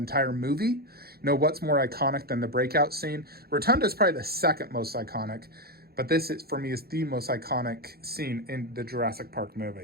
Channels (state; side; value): late; left; 0.45 ms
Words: movie. You know, what's more iconic than the breakout scene? Rotunda is probably the second most iconic. But this, is, for me, is the most iconic scene in the Jurassic Park